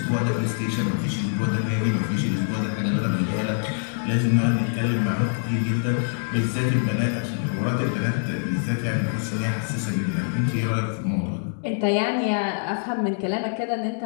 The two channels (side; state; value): right; silent; digital silence